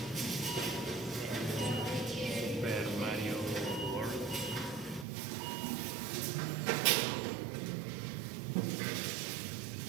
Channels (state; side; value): drops out; left; at 5.1 s